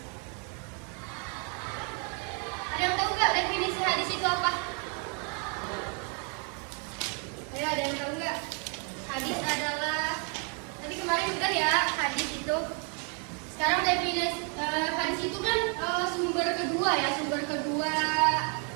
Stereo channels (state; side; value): quieter; left; 38.4 dB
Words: Ada yang tahu nggak definisi hadis itu apa? Ayo, ada yang tahu nggak? Hadis adalah, tadi kemarin udah ya, hadis itu. Sekarang definisi hadis itu kan sumber kedua